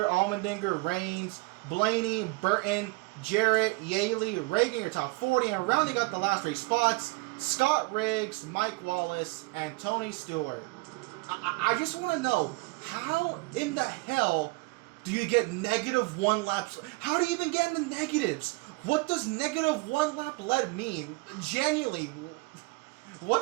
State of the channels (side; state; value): left; quieter; 25.1 dB